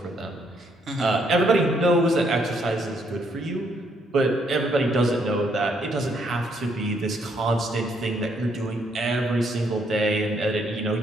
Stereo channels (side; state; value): both; normal; correlation 0.71